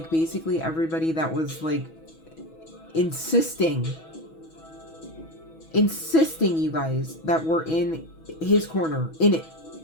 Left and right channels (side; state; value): right; late; 6.2 ms